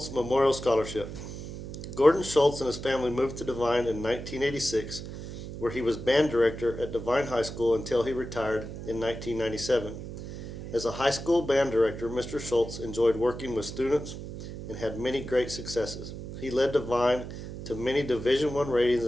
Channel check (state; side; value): noise; right; hum, 9 dB below the sound